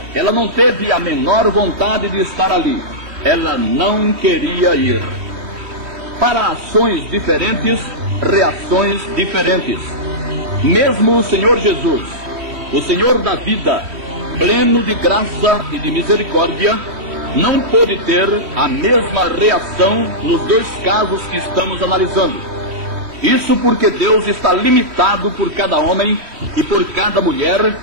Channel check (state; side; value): late; left; 3.1 ms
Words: ela não teve a menor vontade de estar ali, ela não queria ir. Para ações diferentes, reações diferentes. Mesmo o Senhor Jesus, o Senhor da vida, pleno de graça e de misericórdia, não pôde ter a mesma reação nos dois casos que estamos analisando. Isso porque Deus está limitado por cada homem e por cada mulher